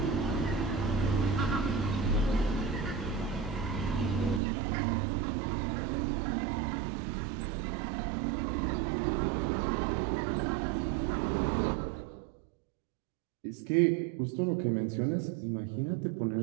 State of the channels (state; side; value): drops out; left; at 4.4 s